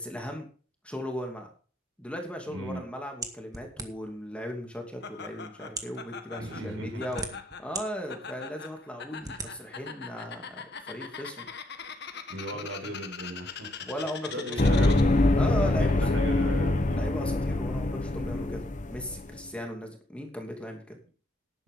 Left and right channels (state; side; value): normal; both; correlation 0.75